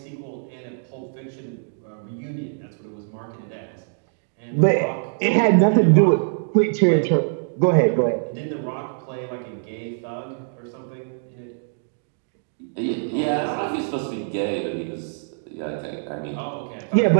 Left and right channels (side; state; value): left; silent; digital silence